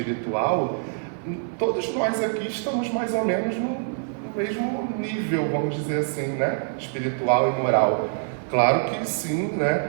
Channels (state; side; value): silent; left; 62 dB below the other